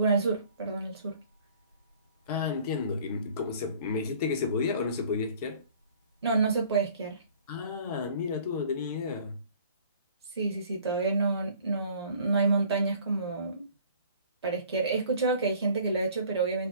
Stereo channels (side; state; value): both; inverted; correlation -0.52